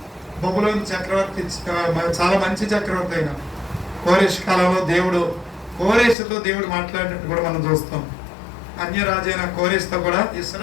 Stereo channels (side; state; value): right; drops out; at 6.2 s